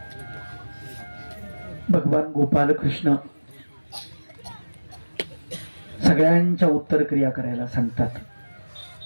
भगवान गोपाल कृष्ण सगळ्यांच्या उत्तर क्रिया करायला सांगतात.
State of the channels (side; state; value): both; inverted; correlation -1.00